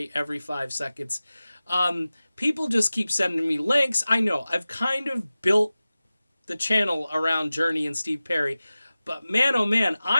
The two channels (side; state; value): both; inverted; correlation -0.97